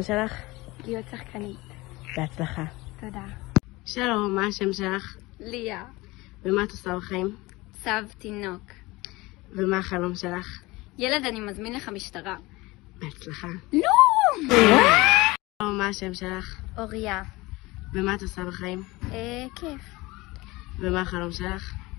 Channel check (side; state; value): right; quieter; 21.5 dB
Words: שלך? להיות שחקנית. בהצלחה. תודה. שלום, מה השם שלך? ליה. ומה את עושה בחיים? צב תינוק. ומה החלום שלך? ילד, אני מזמין לך משטרה. בהצלחה. לא! שלום, מה השם שלך? אוריה. ומה את עושה בחיים? כיף. ומה החלום שלך?